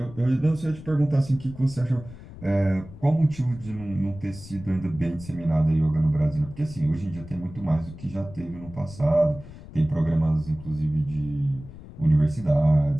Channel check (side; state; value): left; noise; rumble, 16 dB below the sound